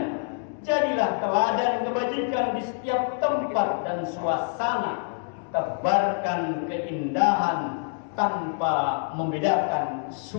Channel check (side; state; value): right; silent; 61 dB below the other